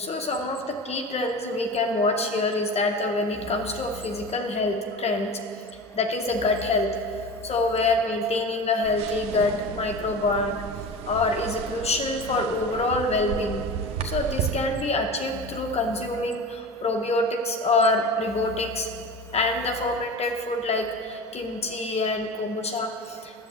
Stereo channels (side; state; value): both; normal; correlation 0.31